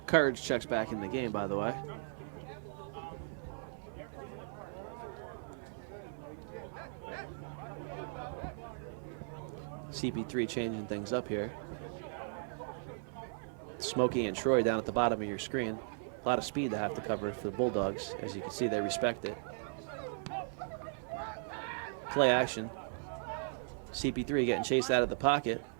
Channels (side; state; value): left; silent; 53 dB below the other